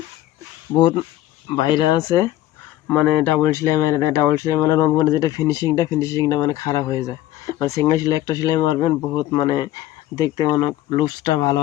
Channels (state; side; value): quieter; right; 14.2 dB